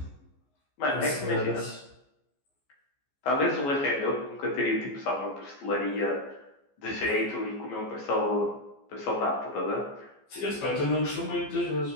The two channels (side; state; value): right; late; 14 ms